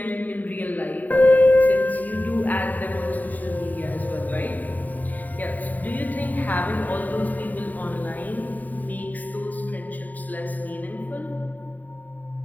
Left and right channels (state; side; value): late; right; 0.082 ms